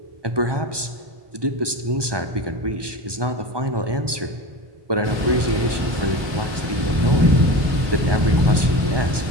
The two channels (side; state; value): left; late; 1.2 ms